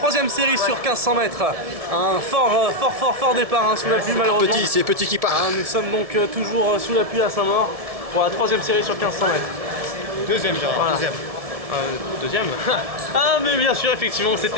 série sur 1500 mètres. Un fort départ hein, sous la pluie malheureusement. C'est petit qui part. Nous sommes donc toujours sous la pluie à Saint-Maur pour la troisième série sur 1500 mètres. Deuxième, Gérard, voilà. Deuxième. Ah mais bien sûr, effectivement,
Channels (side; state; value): left; late; 1.7 ms